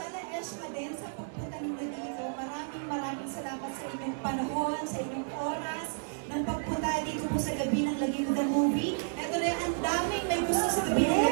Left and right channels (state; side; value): silent; left; digital silence